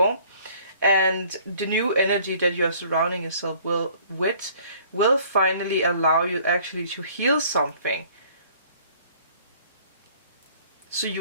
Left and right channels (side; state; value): both; inverted; correlation -0.56